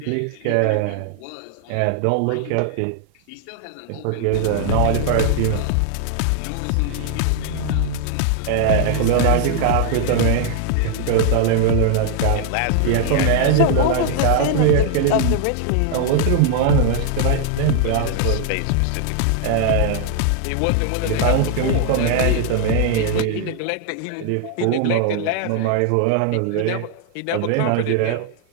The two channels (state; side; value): different; both; correlation 0.00